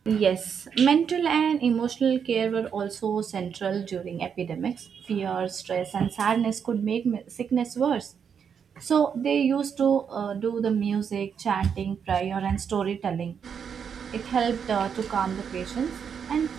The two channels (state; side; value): quieter; left; 7.2 dB